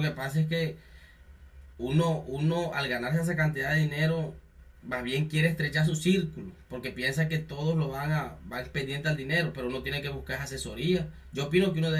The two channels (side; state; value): both; identical; correlation 1.00